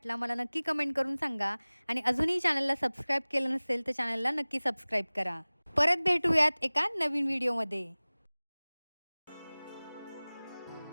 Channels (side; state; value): both; inverted; correlation -1.00